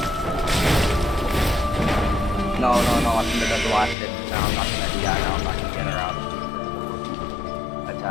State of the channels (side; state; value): right; drops out; at 4.0 s